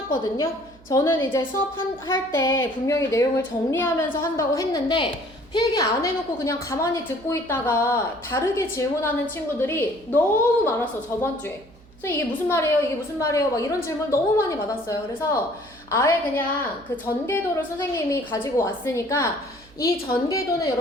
저는 이제 수업할 때 분명히 내용을 정리하면서 한다고 했는데 필기 안 해놓고 그냥 가만히 듣고 있다가 다르게 질문하는 친구들이 너무 많았어, 저번 주에. 그래서 이게 무슨 말이에요? 이게 무슨 말이에요? 막 이런 질문 너무 많이 받았어요. 그래서 아예 그냥 그 전개도를 선생님이 가지고 왔으니까 이 전개도는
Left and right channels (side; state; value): right; noise; hum, 25 dB below the sound